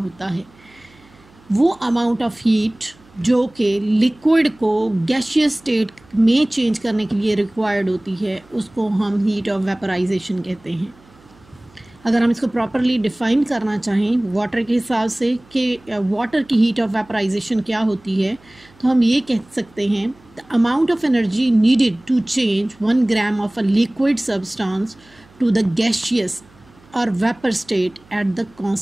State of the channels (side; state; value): right; noise; hum, 28 dB below the sound